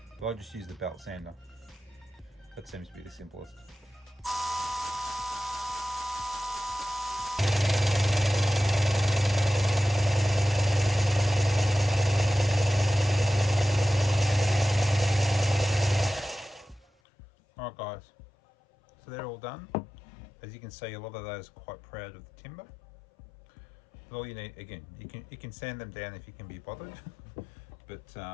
but I just use the belt sander. That seems to be the simplest. Alright guys, so they're all done. As you can see, a lot of those are quite proud of the timber. But all you need, again, you can sand them down if you can be bothered, but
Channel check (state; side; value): drops out; right; at 16.9 s